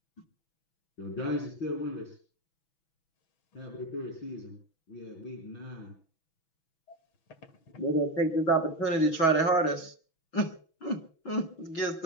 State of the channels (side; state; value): right; late; 6.1 ms